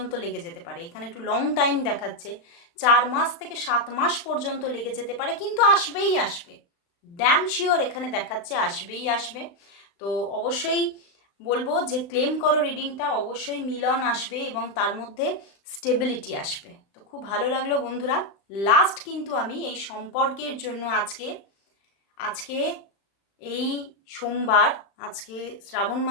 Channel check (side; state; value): right; late; 35 ms